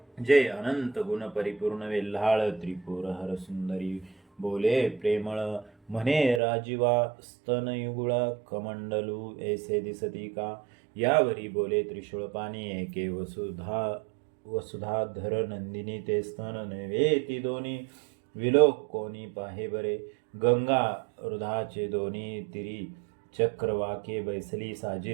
जे अनंत गुण परिपूर्ण वेल्हाळ त्रिपुर हर सुंदरी बोले प्रेमळ म्हणे राजीवा स्तनयुगुळ कमंडलू ऐसे दिसती का यावरी बोले त्रिशूळ पाणी एके वसुधाधर नंदिनी ते स्तन नव्हे ती दोन्ही विलोक कोणी पाहे बरे गंगा हृदाचे दोन्ही तिरी चक्रवाके बैसली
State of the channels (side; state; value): left; drops out; at 6.4 s